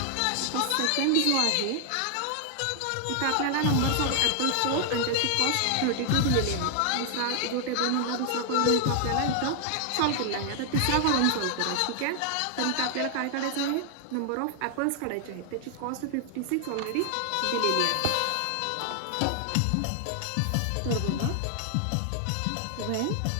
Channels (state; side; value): different; both; correlation 0.00